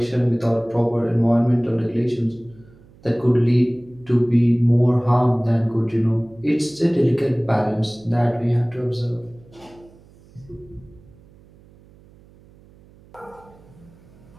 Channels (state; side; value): noise; right; hum, 26 dB below the sound